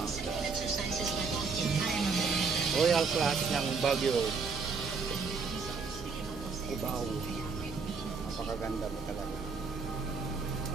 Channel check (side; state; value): left; quieter; 4.9 dB